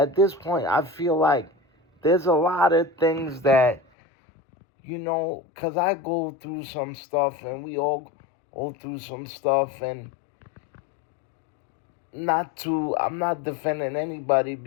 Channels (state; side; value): drops out; right; at 3.8 s